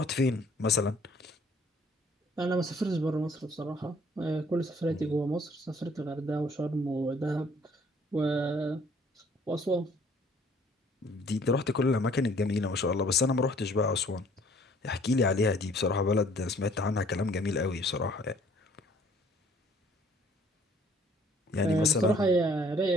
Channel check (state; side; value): normal; both; correlation 0.58